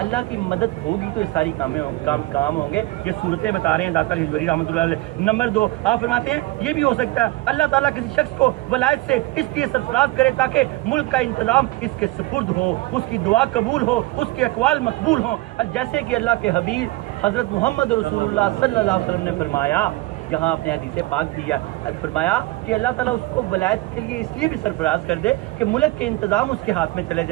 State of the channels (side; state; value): left; quieter; 19.7 dB